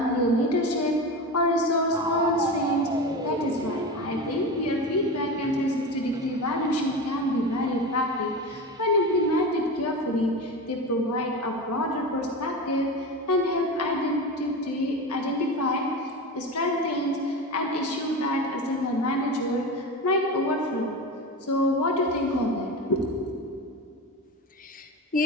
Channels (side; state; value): both; normal; correlation 0.25